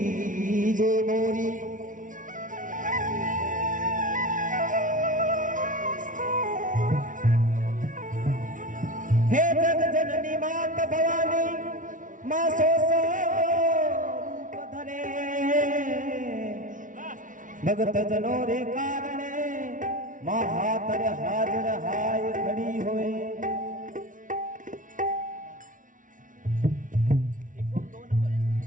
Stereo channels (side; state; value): left; late; 0.38 ms